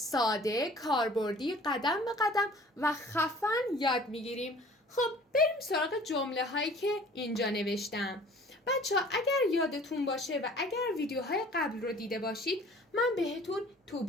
کاربردی، قدم به قدم و خفن یاد میگیریم. خب بریم سراغ جمله هایی که اینجا نوشتم. بچه‌ها اگر یادتون باشه و اگر ویدیوهای قبل رو دیده باشید، من بهتون to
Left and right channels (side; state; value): both; normal; correlation 0.49